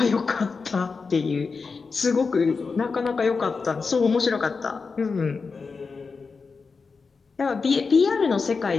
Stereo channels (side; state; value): right; quieter; 4.7 dB